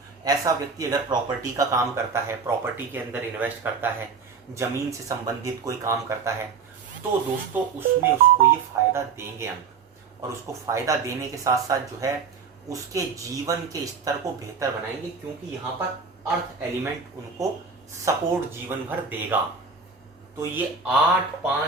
ऐसा व्यक्ति अगर प्रॉपर्टी का काम करता है, प्रॉपर्टी के अंदर इन्वेस्ट करता है, जमीन से संबंधित कोई काम करता है, तो दोस्तों उसमें उसको ये फायदा देंगे अंक, और उसको फायदा देने के साथ साथ जो है उसके जीवन के स्तर को बेहतर बनाएंगे, क्योंकि यहाँ पर अर्थ एलिमेंट उनको सपोर्ट जीवन भर देगा। तो ये 8,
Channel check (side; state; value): left; quieter; 5.3 dB